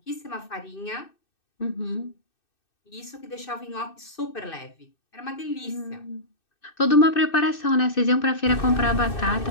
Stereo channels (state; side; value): late; right; 2.6 ms